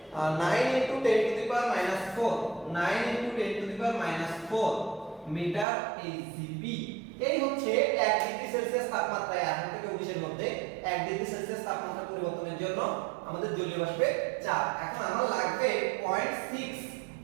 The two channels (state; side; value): drops out; left; at 5.7 s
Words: 9 × 10 to the power -4 9 × 10 to the power -4 meter HGB. এই হচ্ছে 1 ডিগ্রি সেলসিয়াস তাপমাত্রায় 18 থেকে 19 এর মধ্যে 1 ডিগ্রি সেলসিয়াস তাপমাত্রা পরিবর্তনের জন্য আমাদের জলীয় বাষ্পের চাপ। এখন আমার লাগবে 0.6